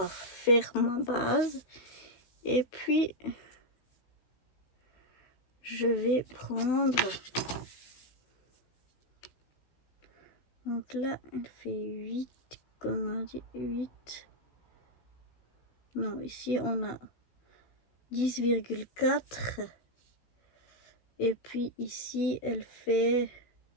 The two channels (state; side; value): late; right; 15 ms